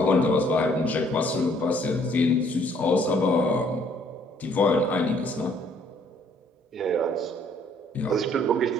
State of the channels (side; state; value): both; normal; correlation 0.63